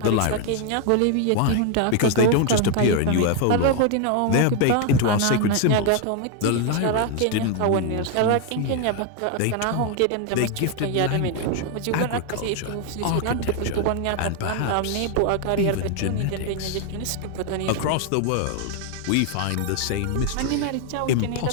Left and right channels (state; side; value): different; both; correlation 0.01